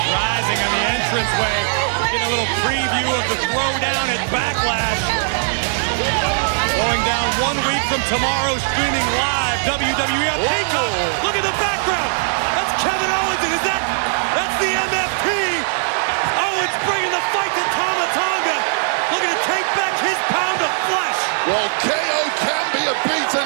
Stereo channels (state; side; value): silent; left; digital silence